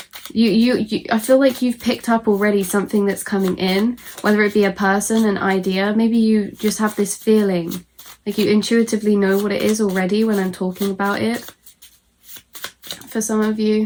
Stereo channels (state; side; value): identical; both; correlation 1.00